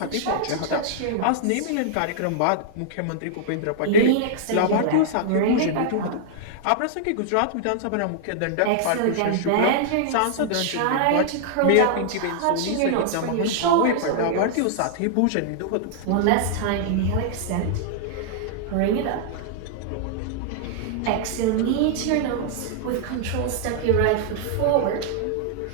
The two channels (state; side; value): different; both; correlation -0.01